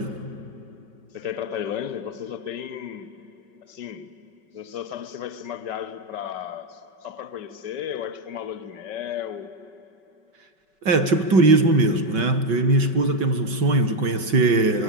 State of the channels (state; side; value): late; left; 5.3 ms